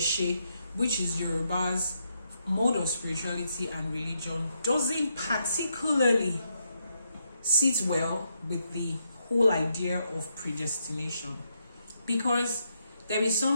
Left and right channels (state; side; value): inverted; both; correlation -0.79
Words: which is Yoruba's mode of spirituality and religion, doesn't particularly sit well with the whole idea of predestination, because there is